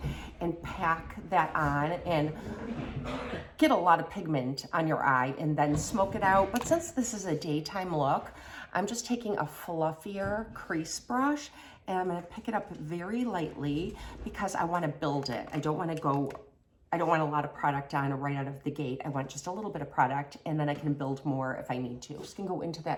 and pack that on and get a lot of pigment on your eye and then smoke it out. But since this is a daytime look, I'm just taking a fluffier crease brush and I'm gonna pick it up very lightly because I wanna build it. I don't want a lot of product on right out of the gate. I want just a little bit of product, and then I can build more if I need to. I'm just gonna go into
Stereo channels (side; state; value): both; identical; correlation 1.00